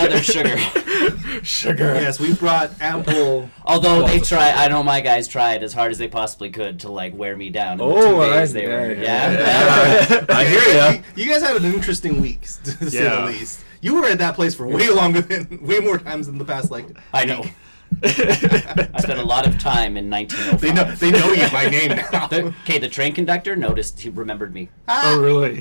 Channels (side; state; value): both; inverted; correlation -1.00